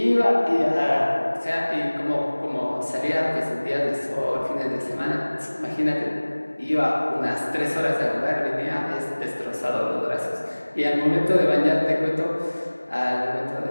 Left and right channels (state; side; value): inverted; both; correlation -1.00